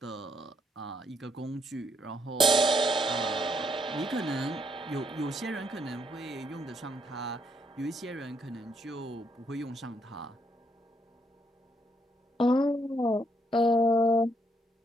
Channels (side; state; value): both; normal; correlation 0.74